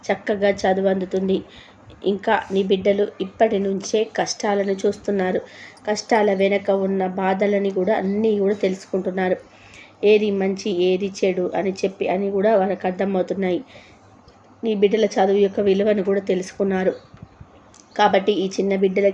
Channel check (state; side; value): identical; both; correlation 1.00